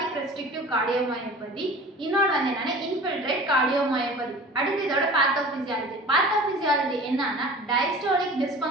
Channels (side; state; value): both; normal; correlation 0.41